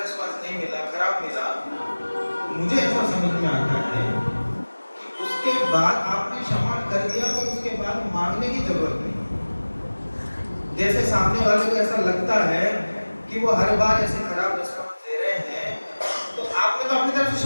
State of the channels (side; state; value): both; inverted; correlation -1.00